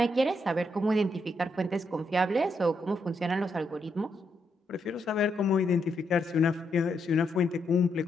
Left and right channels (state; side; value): normal; both; correlation 0.79